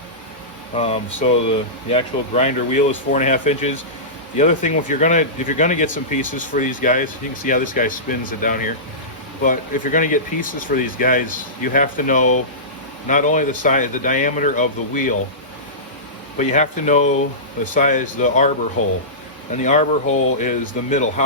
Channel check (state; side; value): normal; both; correlation -0.20